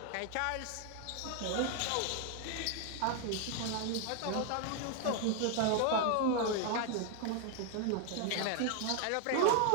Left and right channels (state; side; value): different; both; correlation 0.01